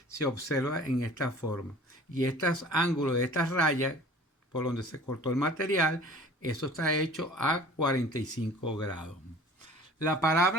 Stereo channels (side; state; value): both; normal; correlation 0.46